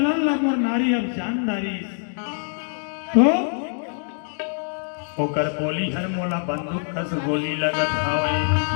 ला मोर नारी अब जानदारी तो होकर बोली हर मोला बंदूक कस गोली लगत हावे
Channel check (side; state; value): right; silent; digital silence